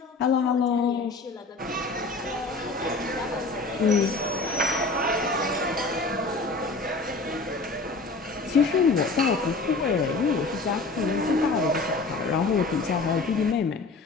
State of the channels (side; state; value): right; quieter; 3.6 dB